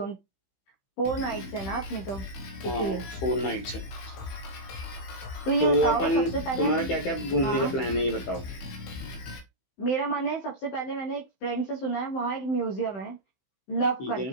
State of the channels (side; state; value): right; late; 15 ms